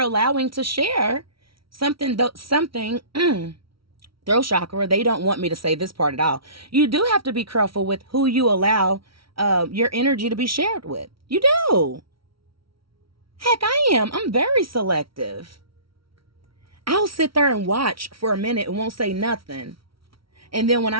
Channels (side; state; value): left; late; 0.75 ms